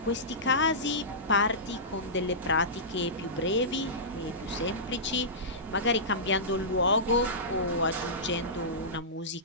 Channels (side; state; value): both; normal; correlation -0.18